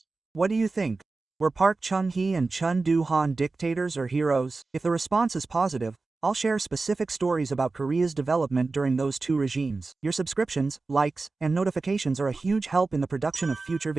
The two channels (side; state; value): left; quieter; 3.7 dB